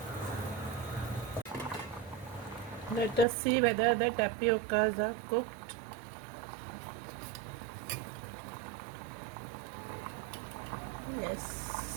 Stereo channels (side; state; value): left; drops out; at 3.2 s